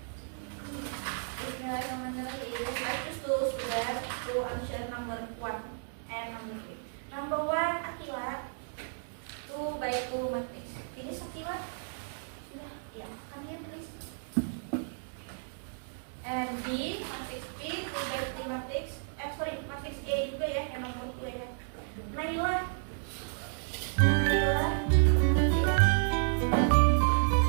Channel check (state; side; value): silent; left; digital silence